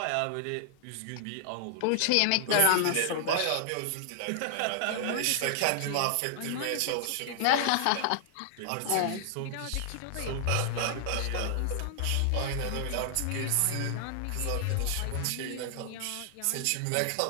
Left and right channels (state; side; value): different; both; correlation -0.01